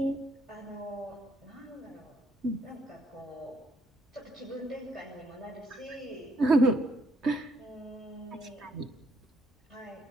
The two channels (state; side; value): normal; both; correlation 0.71